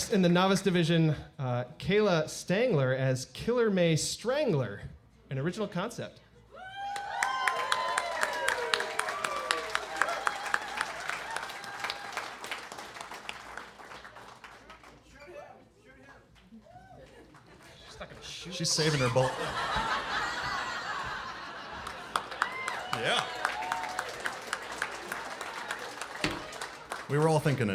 in the novice division, Kayla Stangler as Killer May Strangler, an original concept. She's saving her bullet. Yeah. We were all thinking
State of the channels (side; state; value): both; identical; correlation 1.00